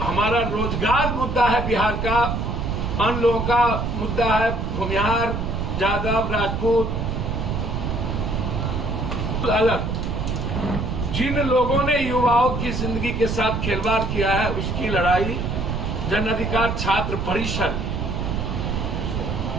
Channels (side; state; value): right; noise; rumble, 2 dB below the sound